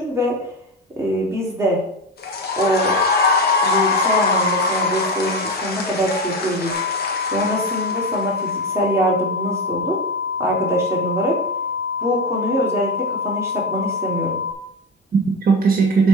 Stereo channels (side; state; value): both; normal; correlation 0.18